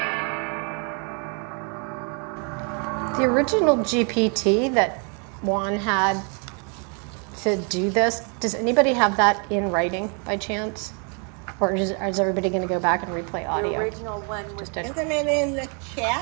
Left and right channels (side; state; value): left; quieter; 37.9 dB